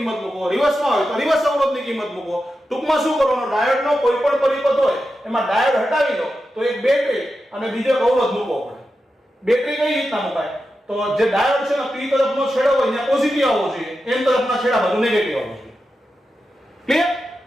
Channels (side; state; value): both; normal; correlation 0.90